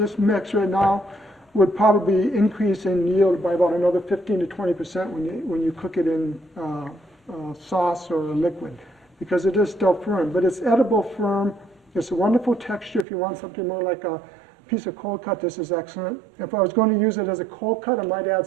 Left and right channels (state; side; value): drops out; left; at 13.1 s